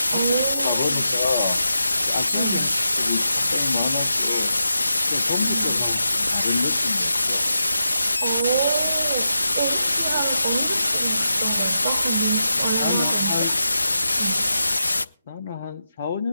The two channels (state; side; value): inverted; both; correlation -0.88